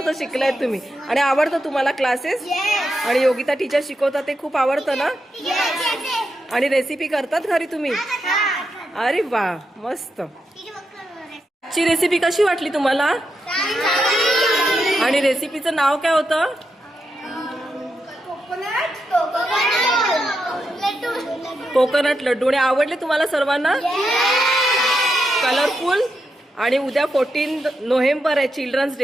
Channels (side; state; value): both; normal; correlation 0.85